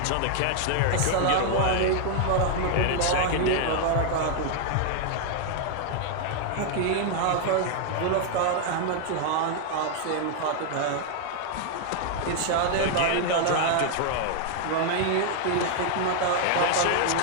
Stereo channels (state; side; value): different; both; correlation 0.00